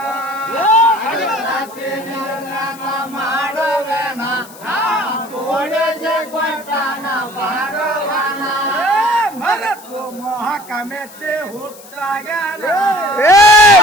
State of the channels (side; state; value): left; noise; hiss, 20 dB below the sound